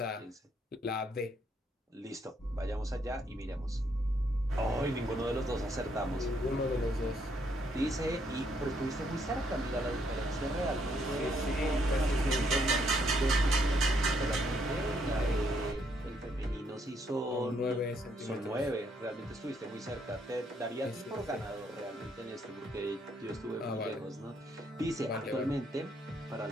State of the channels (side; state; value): both; normal; correlation 0.72